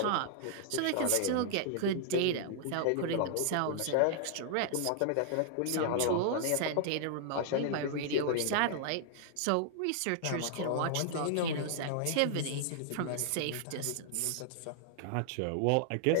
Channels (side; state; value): both; different; correlation -0.01